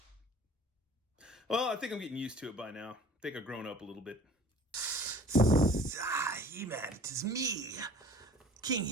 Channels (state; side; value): normal; both; correlation 0.48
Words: Well, I think I'm getting used to it by now. I think I've grown up a little bit. He-Man, it is me, King